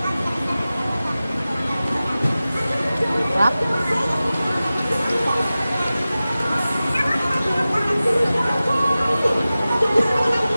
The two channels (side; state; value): both; inverted; correlation -0.96